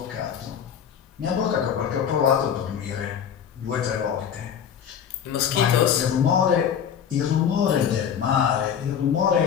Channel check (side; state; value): right; quieter; 8.3 dB